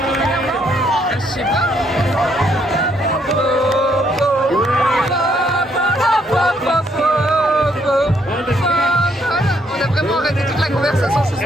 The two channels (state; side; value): normal; both; correlation 0.71